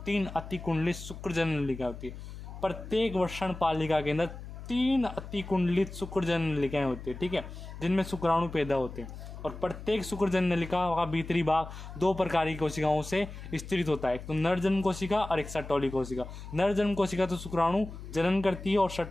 3 अतिकुंडलित शुक्रजनन नलिका होती है। प्रत्येक वर्षण पालिका के अंदर 3 अतिकुंडलित शुक्रजनन नलिकाएं होती है, ठीक है, जिनमें शुक्राणु पैदा होते हैं। और प्रत्येक शुक्रजनन नलिका का भीतरी भाग 2 प्रकार की कोशिकाओं से स्थित होता है, एक तो नरजन्म कोशिका और एक सटोली कोशिका। नरजन्म कोशिका तो शुक्राणु जनन करती है, और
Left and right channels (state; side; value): noise; left; hum, 12 dB below the sound